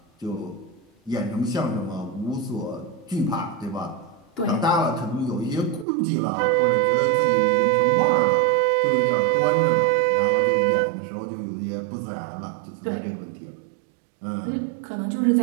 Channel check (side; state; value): left; drops out; at 5.9 s